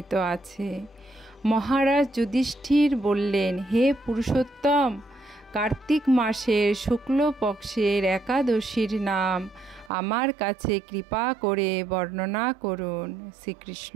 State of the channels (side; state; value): left; drops out; at 9.9 s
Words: আছে। মহারাজ যুধিষ্ঠির বললেন, হে পুরুষোত্তম, কার্তিক মাসের শুক্লপক্ষের একাদশীর নাম আমার কাছে কৃপা করে বর্ণনা করুন।